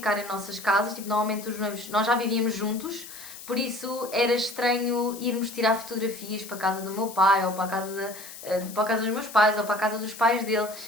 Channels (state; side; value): noise; left; hiss, 14 dB below the sound